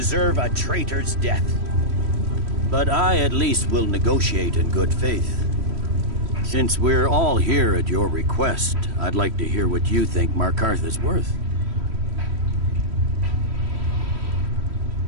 a traitor's death. But I at least will negotiate in good faith. Since we're all here at your request, I'd like to hear what you think Markarth is worth.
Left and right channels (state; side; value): late; left; 3.1 ms